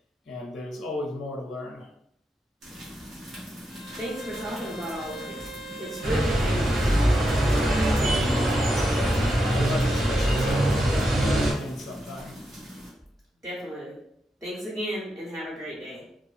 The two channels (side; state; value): both; normal; correlation 0.85